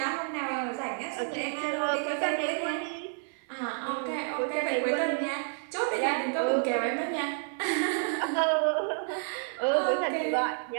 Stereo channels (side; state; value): left; silent; 58 dB below the other